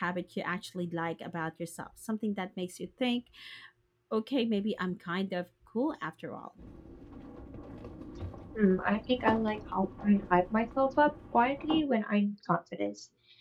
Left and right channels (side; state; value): both; identical; correlation 1.00